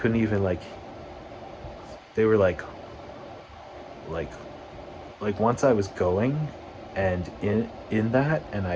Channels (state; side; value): identical; both; correlation 1.00